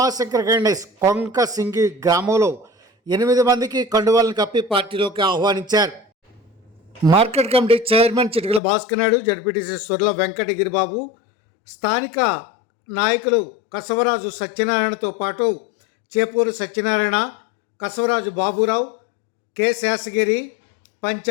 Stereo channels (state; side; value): drops out; right; at 8.6 s